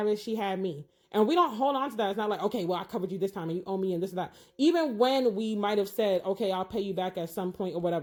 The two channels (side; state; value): both; identical; correlation 1.00